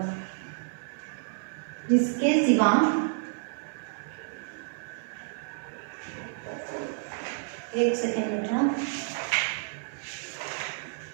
जिसके सिवा, एक सेकेंड बेटा,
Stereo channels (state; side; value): silent; left; 58 dB below the other